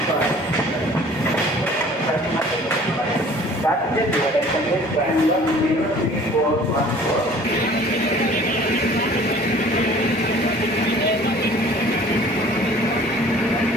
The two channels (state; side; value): normal; both; correlation 0.50